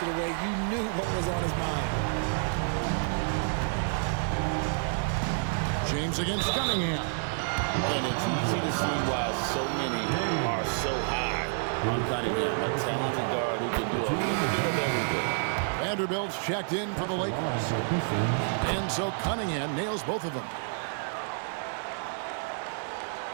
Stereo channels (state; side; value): silent; left; digital silence